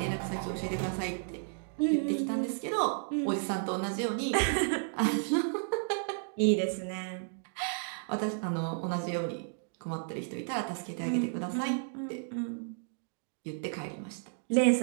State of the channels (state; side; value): silent; left; digital silence